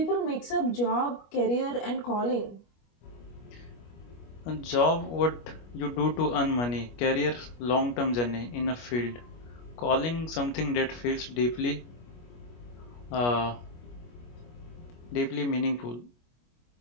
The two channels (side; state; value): right; late; 25 ms